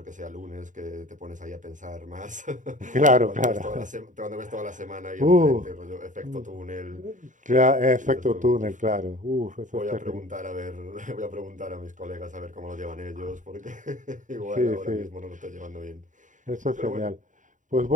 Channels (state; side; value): late; left; 0.37 ms